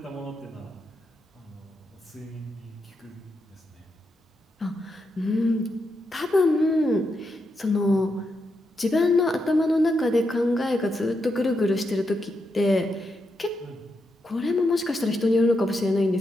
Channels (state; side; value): normal; both; correlation 0.84